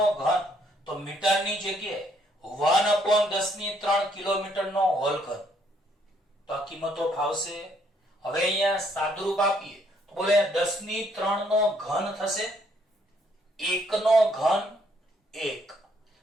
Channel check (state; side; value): normal; both; correlation 0.68